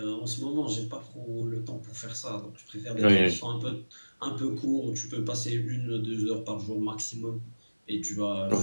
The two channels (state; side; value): inverted; both; correlation -1.00